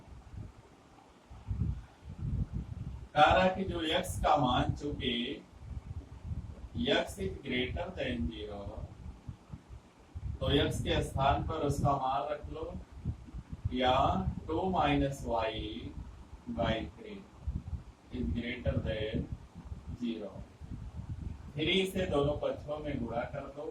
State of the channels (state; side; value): identical; both; correlation 1.00